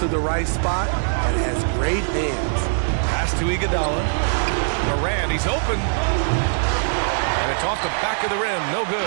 the right spot, and has great hands. Pass to Iguodala. Morant, he's open. And it's off the back of the rim. No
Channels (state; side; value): silent; left; digital silence